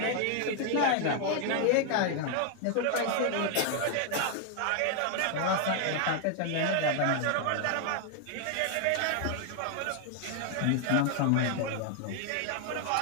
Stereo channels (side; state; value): both; different; correlation 0.00